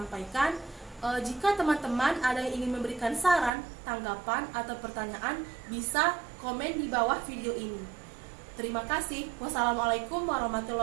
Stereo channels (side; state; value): left; drops out; at 3.5 s